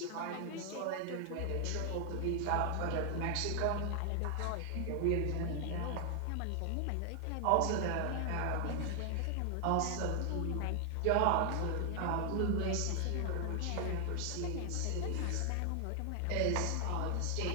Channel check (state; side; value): different; both; correlation 0.00